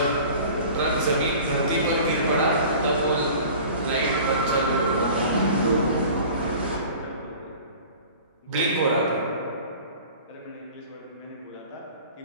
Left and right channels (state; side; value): inverted; both; correlation -0.43